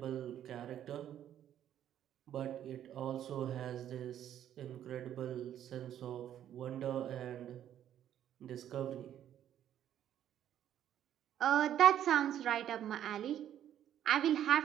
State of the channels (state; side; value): quieter; left; 10.8 dB